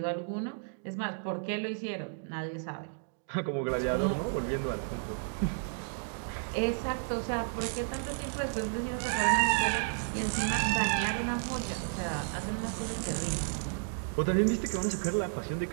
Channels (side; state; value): left; silent; digital silence